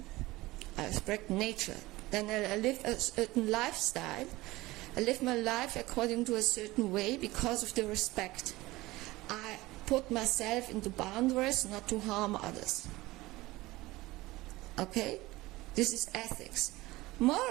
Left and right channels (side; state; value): left; quieter; 19.4 dB